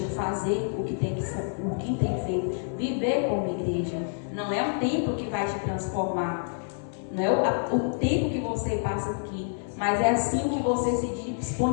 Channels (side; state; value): right; silent; digital silence